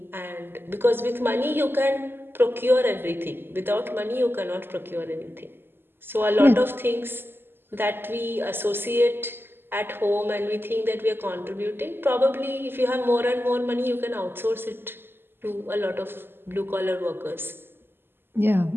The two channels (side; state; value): left; late; 0.10 ms